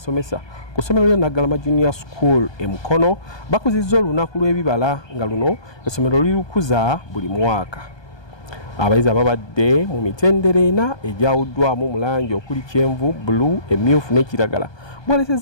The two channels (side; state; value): right; late; 1.2 ms